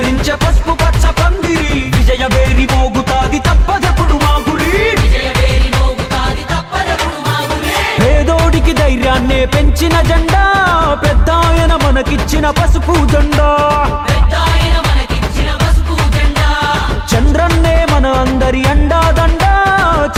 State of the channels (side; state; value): both; identical; correlation 1.00